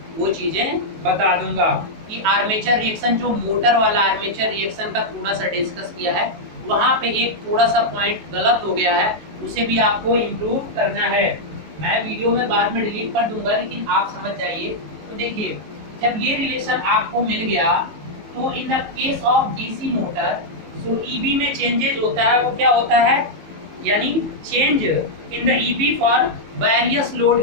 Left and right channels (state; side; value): late; left; 19 ms